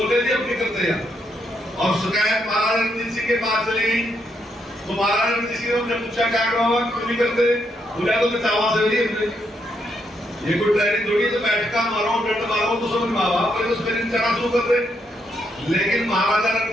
थे अपनी करते हैं। और शिकायत महाराजा रणजीत सिंह के पास चली गई, तो महाराजा रणजीत सिंह ने पूछा क्या करो क्यों नहीं करते, बोला तो चावा से नहीं, ये कोई ट्रेनिंग थोड़ी तो बैठका मारो डंड मारो तो समझ में आवा, पर उस ट्रेनिंग चढ़ा शुरू कर दे। लेकिन महाराजा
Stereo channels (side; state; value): both; normal; correlation 0.78